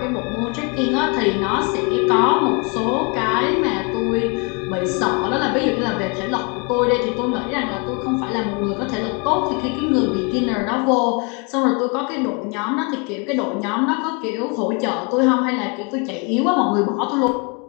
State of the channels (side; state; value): right; quieter; 32.9 dB